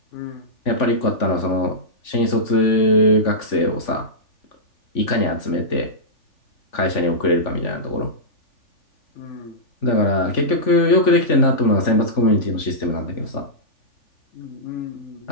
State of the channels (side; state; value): right; late; 3.5 ms